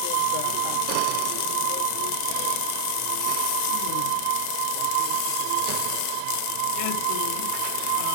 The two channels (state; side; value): different; both; correlation 0.00